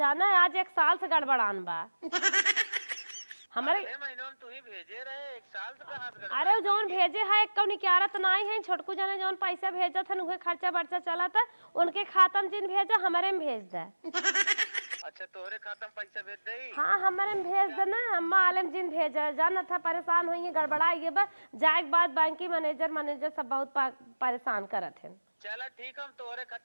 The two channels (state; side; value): inverted; both; correlation -1.00